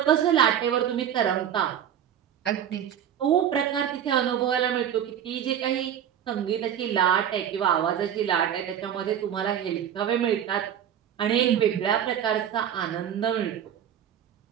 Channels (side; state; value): left; quieter; 9.6 dB